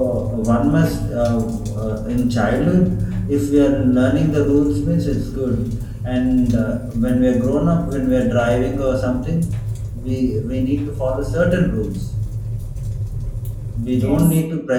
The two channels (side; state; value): both; identical; correlation 1.00